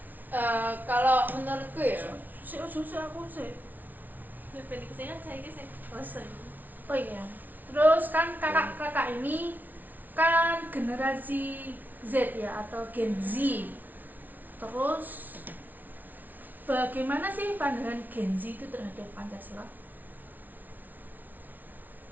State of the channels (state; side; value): late; left; 0.081 ms